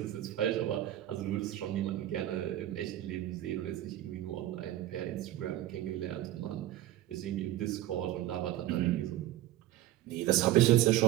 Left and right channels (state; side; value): quieter; left; 14.0 dB